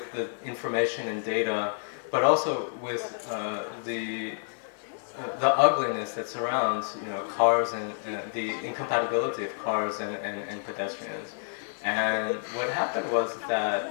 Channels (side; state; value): right; silent; 59 dB below the other